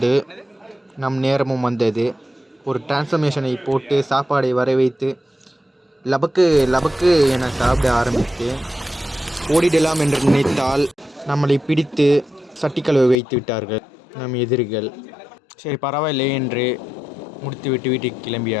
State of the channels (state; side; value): drops out; right; at 13.2 s